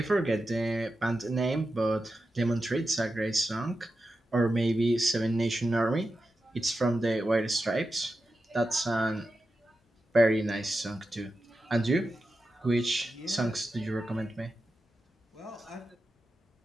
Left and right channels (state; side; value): normal; both; correlation 0.91